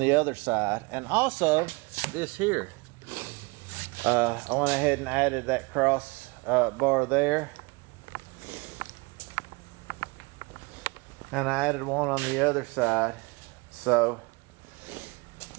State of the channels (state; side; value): quieter; left; 27.6 dB